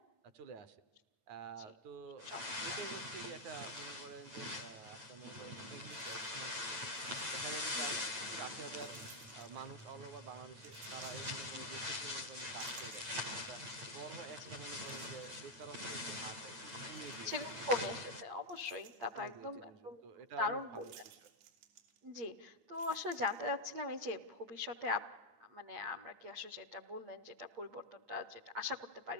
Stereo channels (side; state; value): left; late; 9.0 ms